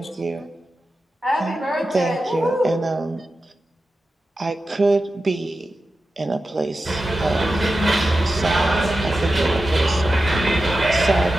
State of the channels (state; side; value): normal; both; correlation 0.92